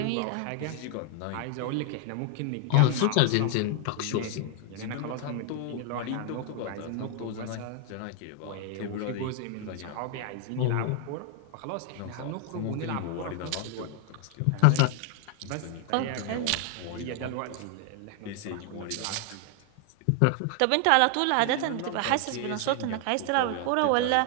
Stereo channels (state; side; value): different; both; correlation 0.00